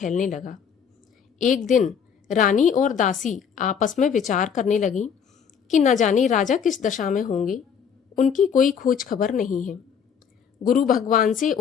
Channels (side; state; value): right; quieter; 7.3 dB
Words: लगा। एक दिन रानी और दासी आपस में विचार करने लगी कि न जाने राजा किस दशा में होंगे, उनकी कोई खोज खबर नहीं है। गुरु भगवान से